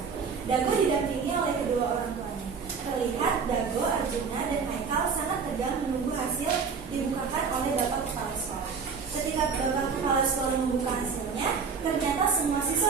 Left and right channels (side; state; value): left; quieter; 5.6 dB